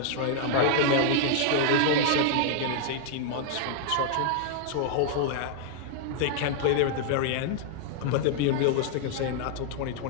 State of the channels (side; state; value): both; different; correlation 0.00